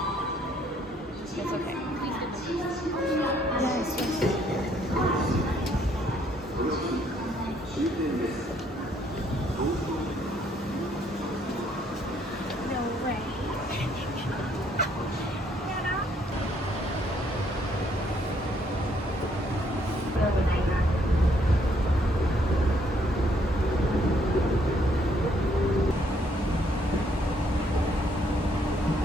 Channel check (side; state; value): both; normal; correlation 0.67